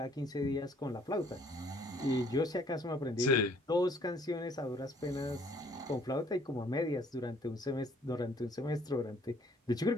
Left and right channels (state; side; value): normal; both; correlation 0.61